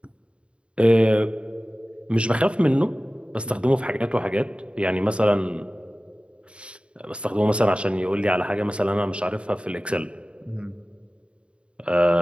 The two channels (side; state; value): left; late; 0.057 ms